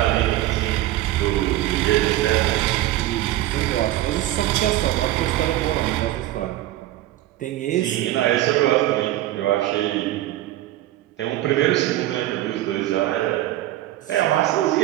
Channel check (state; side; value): quieter; left; 14.9 dB